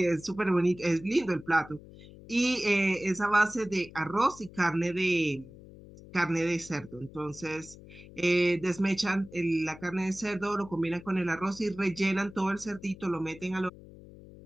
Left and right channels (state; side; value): noise; left; hum, 19 dB below the sound